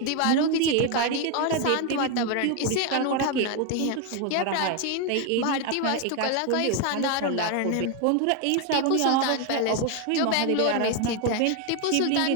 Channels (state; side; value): different; both; correlation 0.01